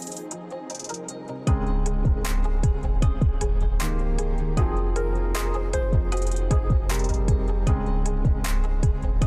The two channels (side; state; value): both; identical; correlation 1.00